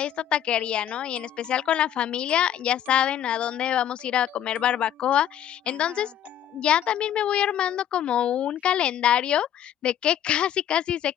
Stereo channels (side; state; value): right; quieter; 10.4 dB